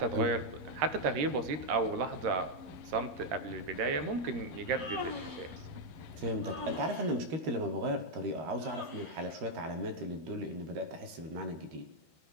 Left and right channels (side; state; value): left; late; 13 ms